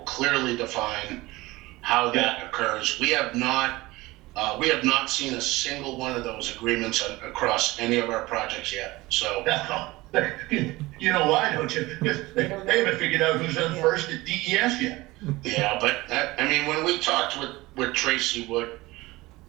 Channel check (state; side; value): quieter; left; 20.2 dB